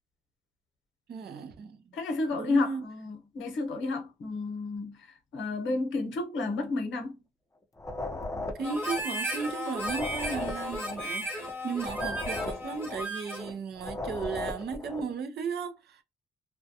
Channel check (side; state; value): both; normal; correlation 0.69